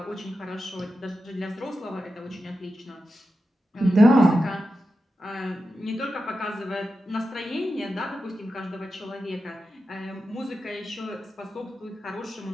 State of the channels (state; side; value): normal; both; correlation 0.91